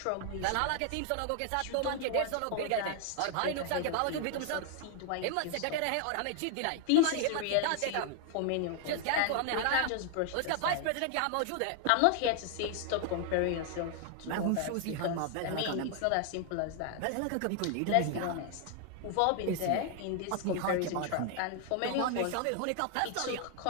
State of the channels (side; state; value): both; different; correlation 0.00